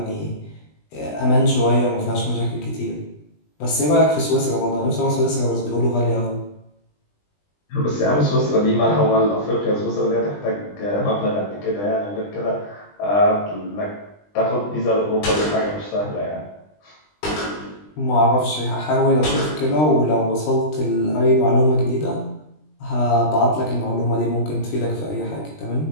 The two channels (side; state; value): right; late; 20 ms